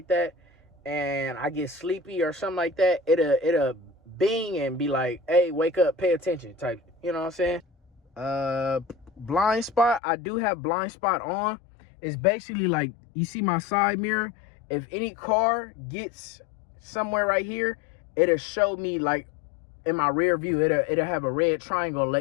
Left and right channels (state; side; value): drops out; right; at 10.0 s